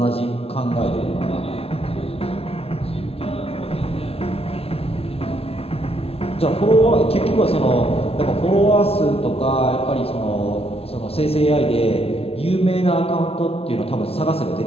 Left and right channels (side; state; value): right; late; 0.29 ms